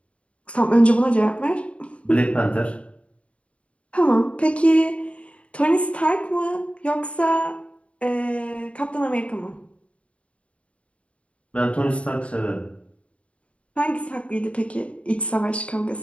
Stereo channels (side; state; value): right; late; 0.062 ms